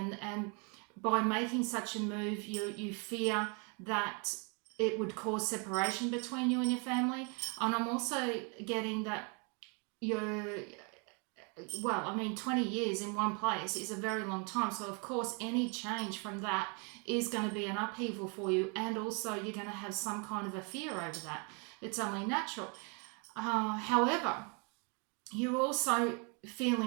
by making such a move, you fear that it would cause separation between you and your family. And I'm also getting that 20 years in one place is a very long time. So of course, any change from that is going to be an upheaval for you. And also you're going to have some kind of a fear over that. It's only natural. However, you're also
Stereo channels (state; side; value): quieter; left; 34.6 dB